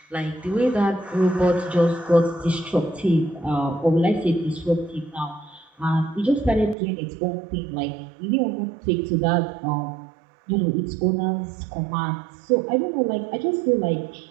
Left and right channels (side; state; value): left; drops out; at 6.8 s